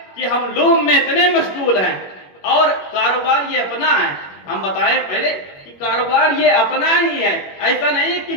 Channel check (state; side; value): late; right; 21 ms